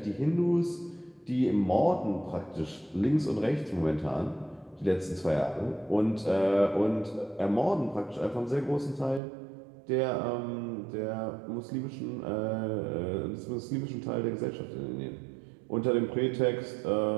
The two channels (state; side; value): drops out; left; at 9.2 s